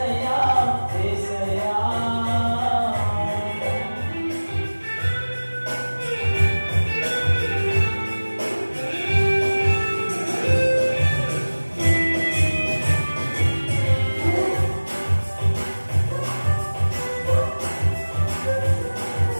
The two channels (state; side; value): inverted; both; correlation -1.00